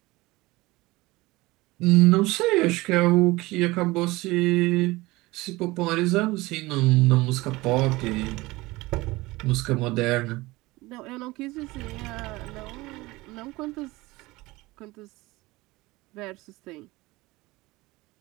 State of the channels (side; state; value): left; quieter; 20.9 dB